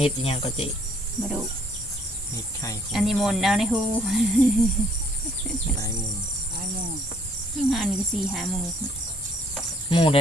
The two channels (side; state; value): both; normal; correlation 0.63